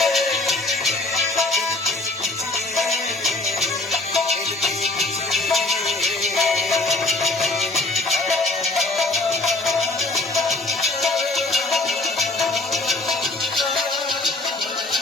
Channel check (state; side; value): quieter; right; 3.0 dB